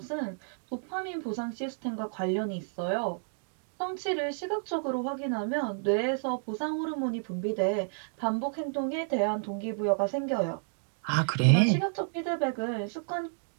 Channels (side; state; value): left; silent; digital silence